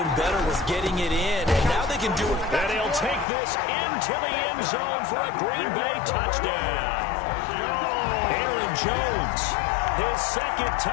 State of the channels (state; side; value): drops out; right; at 3.2 s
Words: better was getting it in, and now they can do it. And he'll take this into the end zone for a Green Bay touchdown. Aaron Jones, his 2nd